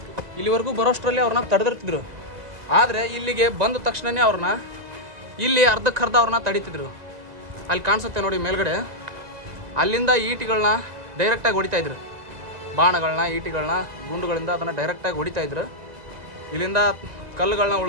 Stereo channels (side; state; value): left; late; 2.0 ms